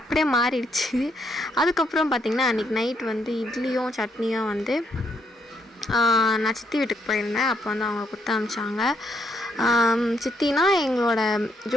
மாறிடுச்சு. அதுக்கப்புறம் பார்த்திங்கன்னா அன்றைக்கி நைட் வந்து இட்லியும் சட்னியும் வந்து நான் சித்தி வீட்டுக்கு போயிருந்தேன். அப்போ வந்து அவங்க கொடுத்து அனுப்பிச்சாங்க. சித்தினா எங்களோட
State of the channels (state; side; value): normal; both; correlation 0.74